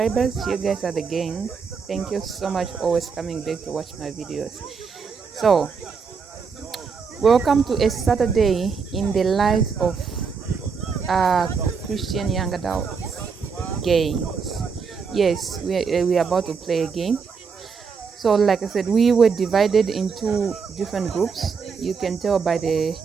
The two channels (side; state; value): left; quieter; 5.6 dB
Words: you guys are the gang. Thank you so much for always coming back to watch my videos. So welcome to a Saturday in the life of Christian young adult games. Yes, we are about to play a game. So like I said, we were divided into different groups. You can tell by the